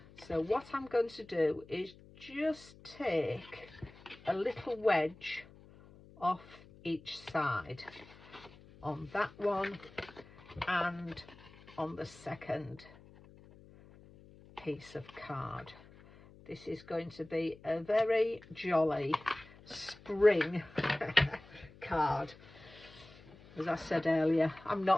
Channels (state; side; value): noise; left; hum, 22 dB below the sound